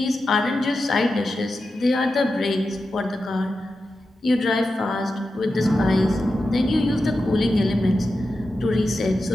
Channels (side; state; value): both; normal; correlation 0.91